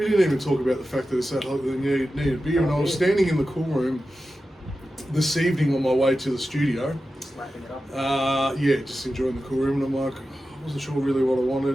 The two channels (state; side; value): normal; both; correlation 0.93